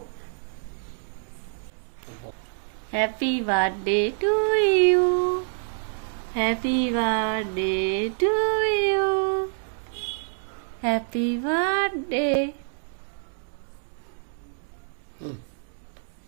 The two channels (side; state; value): left; silent; digital silence